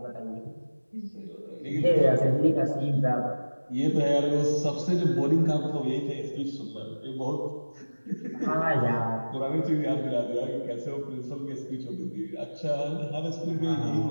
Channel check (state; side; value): inverted; both; correlation -1.00